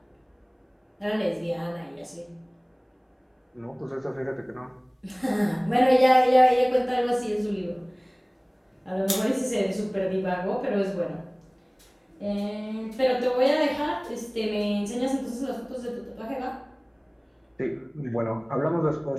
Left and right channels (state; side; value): identical; both; correlation 1.00